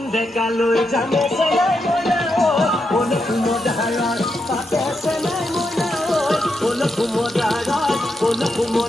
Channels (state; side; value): normal; both; correlation 0.84